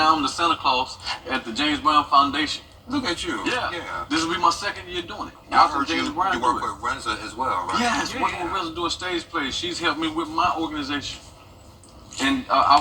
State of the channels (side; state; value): both; identical; correlation 1.00